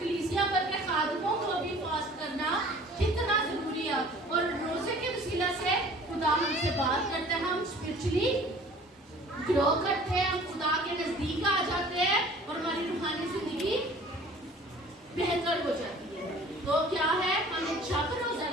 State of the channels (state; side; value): normal; both; correlation 0.48